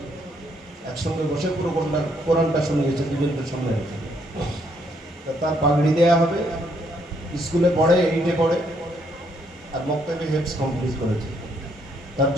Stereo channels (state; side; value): normal; both; correlation 0.71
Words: একসঙ্গে বসে পুরো কোরআনটা শুনিয়েছে দুজনকে সঙ্গে। তার পাগড়ি দেওয়া হবে, স্কুলে পড়ে, 8-এ পড়ে, আর বক্তব্যে হেফজ কমপ্লিট করেছে। তার